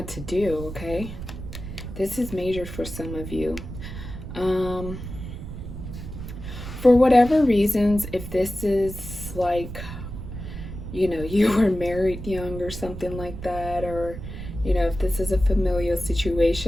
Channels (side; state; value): right; noise; rumble, 9 dB below the sound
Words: to do? Okay, this is major for some of you. For whatever reasons, if this is like, you were married young or something like that, or if this is a familial